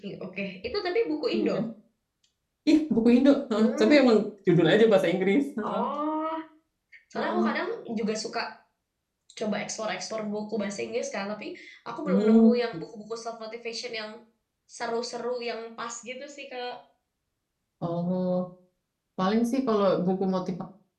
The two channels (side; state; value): both; identical; correlation 1.00